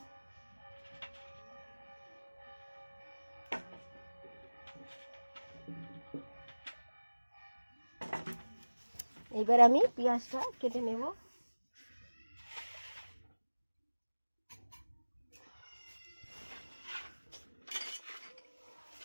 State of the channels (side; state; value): both; inverted; correlation -1.00